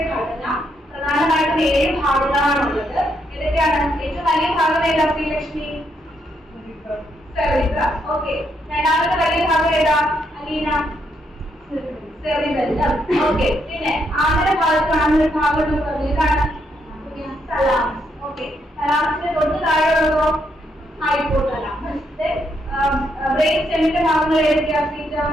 ഘടന. പ്രധാനമായിട്ടും 7 ഭാഗങ്ങളാണുള്ളത്. ഏതൊക്കെയാണ്? ഏറ്റവും വലിയ ഭാഗം ഏതാ ശ്രീലക്ഷ്മി? സെറിബ്രം. ഓക്കെ, രണ്ടാമത്തെ വലിയ ഭാഗം ഏതാ അലീന? സെറിബെല്ലം. ഓക്കെ, പിന്നെ ആന്തര ഭാഗത്ത് കാണുന്ന ഒരു ഭാഗം എന്ന് പറഞ്ഞത് ഏതാണ്? തലാമസ്. ഓക്കെ, തലാമസിന്റെ തൊട്ട് താഴെയുള്ളതോ? ഹൈപ്പോതലാമസ്. ബ്രെയിൻ സ്റ്റെമിന്റെ ഭാഗങ്ങൾ ഏതൊക്കെയാ?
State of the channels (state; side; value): normal; both; correlation 0.77